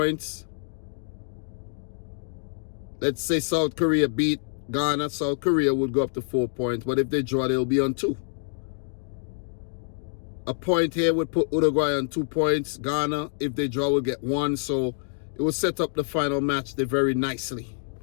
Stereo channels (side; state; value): right; silent; digital silence